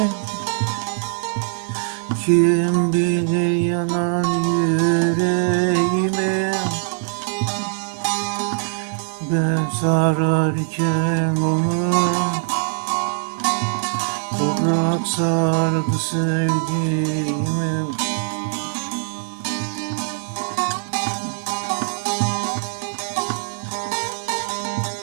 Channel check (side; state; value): left; silent; digital silence